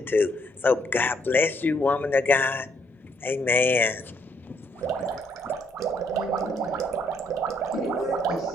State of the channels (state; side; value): normal; both; correlation 0.71